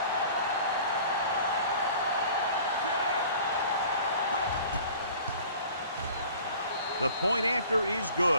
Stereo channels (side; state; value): both; inverted; correlation -0.47